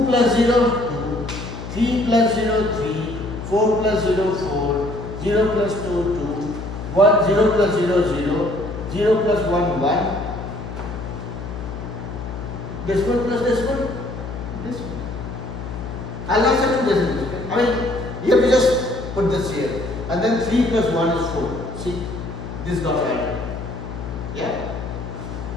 plus 0, 2, 3 plus 0, 3, 4 plus 0, 4, 0 plus 2, 2, 1, 0 plus 0, 0, 0 plus 1, 1. Decimal plus decimal, decimal. I'll not say 2 decimals. I mean, here we just put this here. And then 3 plus 1 is 4. See, this got added. Yeah.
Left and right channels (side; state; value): left; noise; hum, 8 dB below the sound